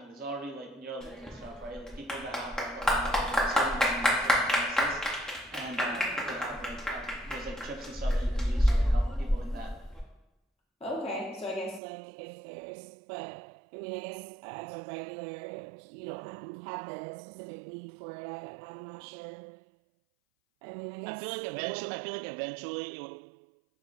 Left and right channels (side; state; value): left; drops out; at 11.8 s